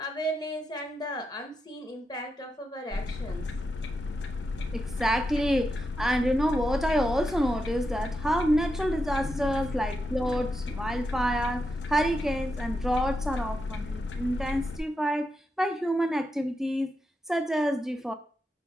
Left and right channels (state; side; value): normal; both; correlation 0.86